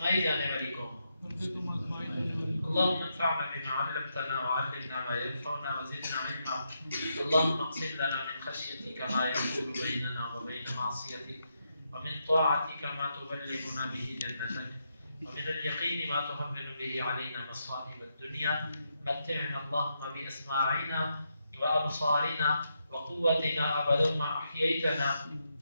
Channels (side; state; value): both; inverted; correlation -0.82